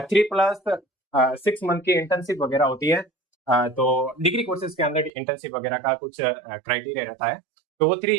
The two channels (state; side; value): drops out; left; at 5.1 s